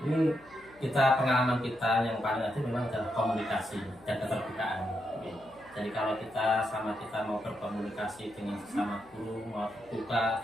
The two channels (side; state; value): left; noise; hum, 26 dB below the sound